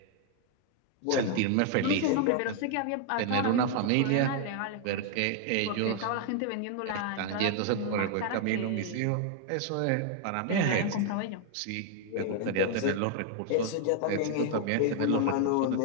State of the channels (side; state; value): both; different; correlation 0.00